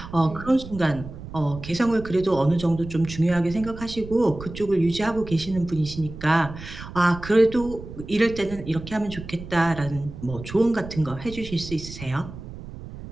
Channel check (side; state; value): right; noise; rumble, 13 dB below the sound